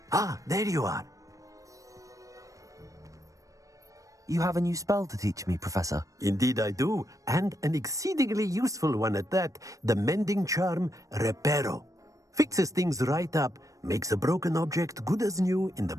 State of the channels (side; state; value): left; late; 0.16 ms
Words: Ah, there you are. You have a new spell to teach me, Professor. Indeed I do, and an exceedingly useful one at that. The mending charm, Reparo. Fixes things right up, makes a broken object good as new in the